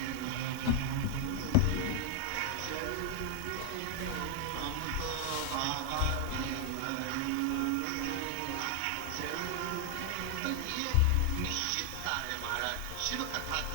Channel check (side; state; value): both; different; correlation 0.00